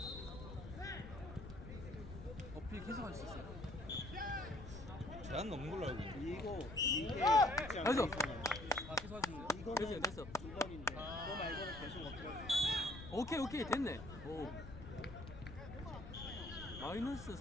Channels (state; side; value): noise; left; rumble, 12 dB below the sound